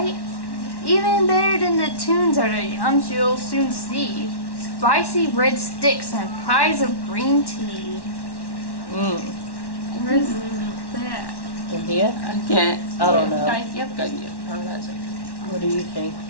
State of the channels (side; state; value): right; late; 1.1 ms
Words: Even better than the tunes are the yums you'll soon see. Spicy red sticks and pies of green tea. Where's that? India? Again. I don't know. Yep, good. Yep. Oh, that's it. What do you think?